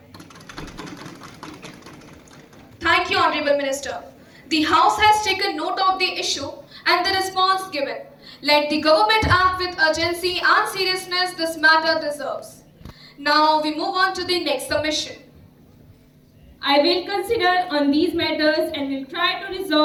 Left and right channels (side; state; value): both; identical; correlation 1.00